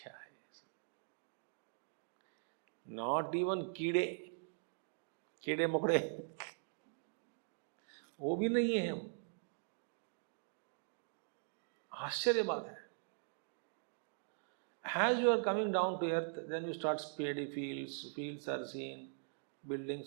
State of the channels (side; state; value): left; silent; digital silence